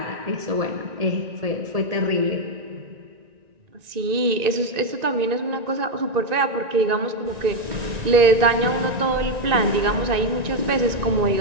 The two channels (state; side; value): late; left; 1.9 ms